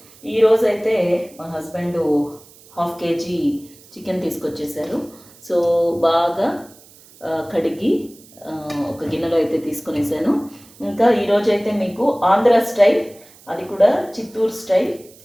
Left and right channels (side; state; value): right; noise; hiss, 24 dB below the sound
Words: ఈరోజు అయితే మా హస్బెండ్ 1/2 కేజీ చికెన్ తీసుకొచ్చేసారు. సో బాగా కడిగి ఒక గిన్నెలో అయితే తీసుకొనేసాను. ఇంకా ఈరోజు అయితే మీకు ఆంధ్ర స్టైల్, అది కూడా చిత్తూరు స్టైల్